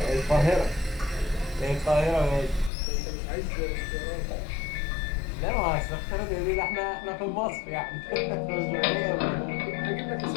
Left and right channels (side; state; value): right; drops out; at 2.7 s